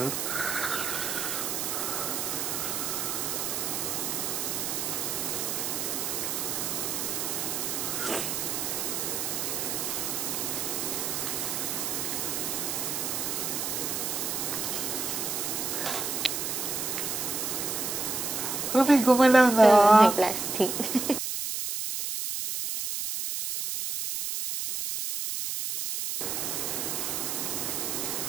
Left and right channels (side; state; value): right; noise; hiss, 1 dB below the sound